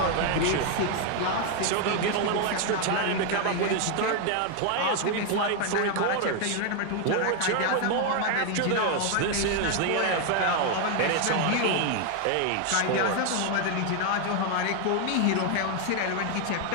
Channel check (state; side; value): different; both; correlation 0.01